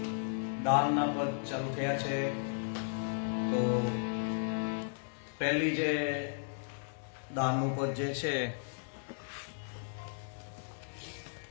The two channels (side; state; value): right; silent; digital silence